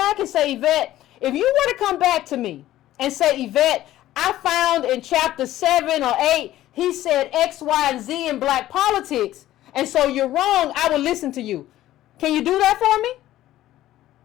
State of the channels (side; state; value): right; quieter; 14.2 dB